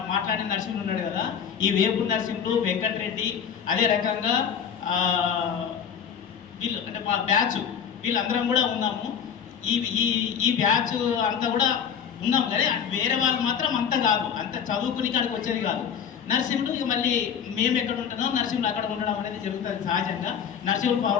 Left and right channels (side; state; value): right; quieter; 7.7 dB